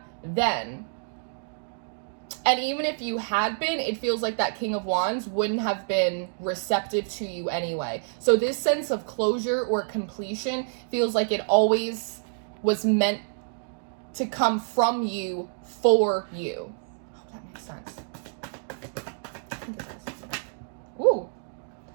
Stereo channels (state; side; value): silent; left; digital silence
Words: then. And even if you had been, it feels like that King of Wands wouldn't have been receptive to you anyway. So this sense of closure or completion feels like it always was meant to come from you for you. I hope that makes sense. Ooh.